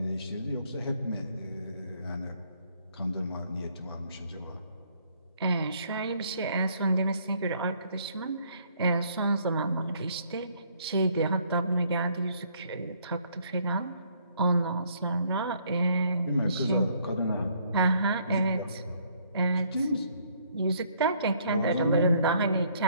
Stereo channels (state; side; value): inverted; both; correlation -0.65